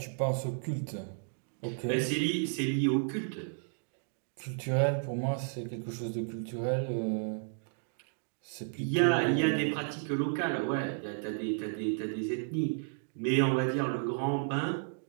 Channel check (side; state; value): left; silent; digital silence